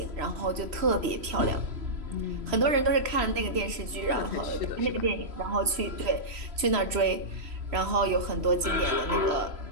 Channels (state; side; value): late; left; 3.0 ms